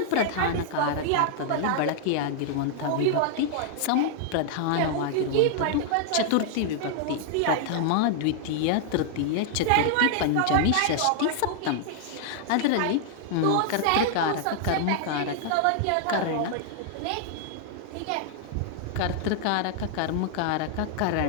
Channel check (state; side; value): different; both; correlation 0.00